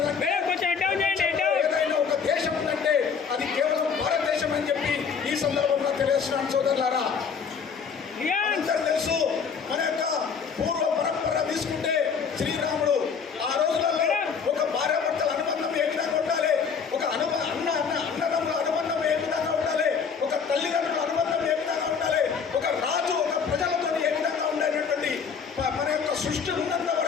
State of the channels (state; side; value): quieter; right; 6.2 dB